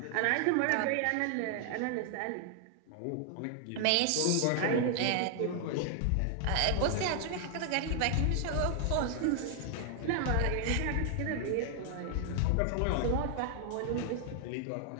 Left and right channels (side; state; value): both; different; correlation 0.00